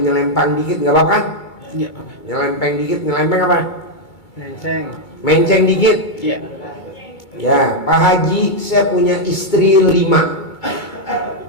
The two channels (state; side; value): late; right; 2.2 ms